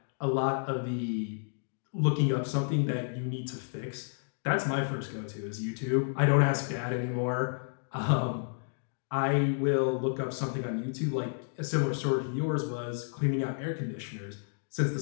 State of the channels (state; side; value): silent; right; digital silence